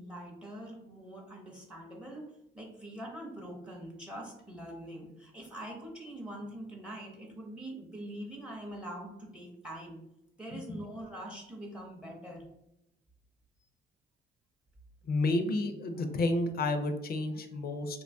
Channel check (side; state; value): both; normal; correlation 0.69